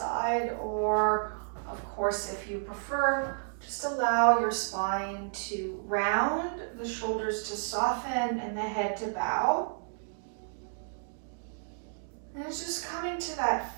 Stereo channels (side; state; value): left; silent; digital silence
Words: or of course, if you prefer, just allow your spine to round, the shoulders to soften, and the head to bow. And it's just coming to that